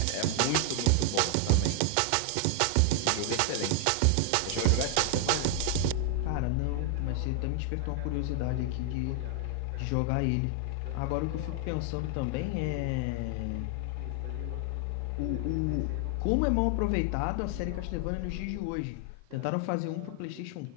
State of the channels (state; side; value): different; both; correlation 0.00